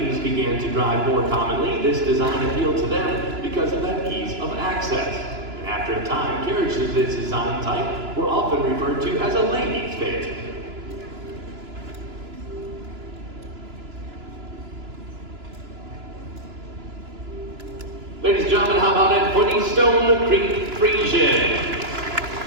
began to drive more commonly, this design appealed to them because of that ease of access. And after a time, carriages of this design type were often referred to as a ladies' phaeton. Ladies and gentlemen, how about it for the Stone Creek Friesian?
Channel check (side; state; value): left; late; 2.9 ms